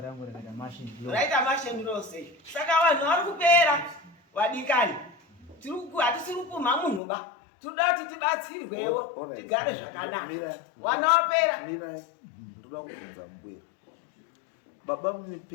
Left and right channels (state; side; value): drops out; right; at 7.0 s